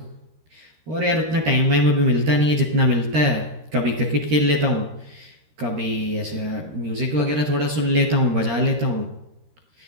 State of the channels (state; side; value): late; left; 13 ms